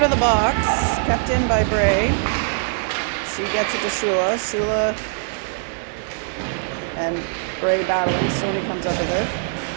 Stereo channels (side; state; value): left; silent; 64 dB below the other